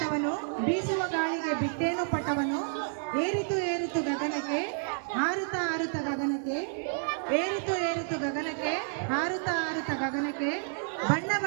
ಬೀಸುವ ಗಾಳಿಗೆ ಬಿಟ್ಟೇನು ಪಟವನು, ಏರಿತು ಏರಿತು ಗಗನಕ್ಕೆ, ಹಾರುತ್ತ ಹಾರುತ್ತ ಗಗನಕ್ಕೆ, ಏರಿತು ಏರಿತು ಗಗನಕ್ಕೆ, ಹಾರುತ್ತ ಹಾರುತ್ತ ಗಗನಕ್ಕೆ, ಬಣ್ಣ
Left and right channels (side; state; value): left; silent; digital silence